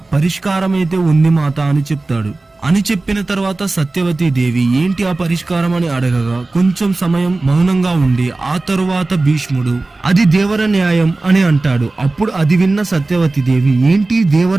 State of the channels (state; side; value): quieter; left; 3.2 dB